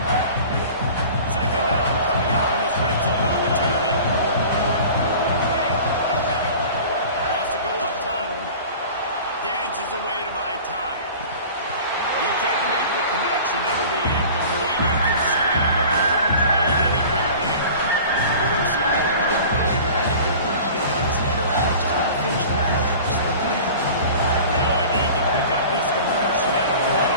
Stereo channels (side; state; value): both; inverted; correlation -0.41